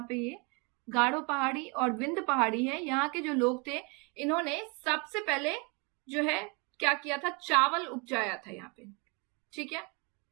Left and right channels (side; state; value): left; quieter; 31.2 dB